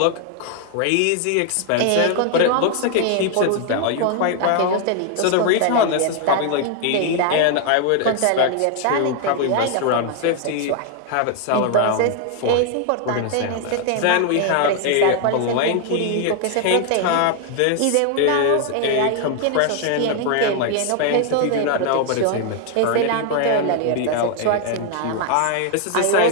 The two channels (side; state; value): both; different; correlation 0.00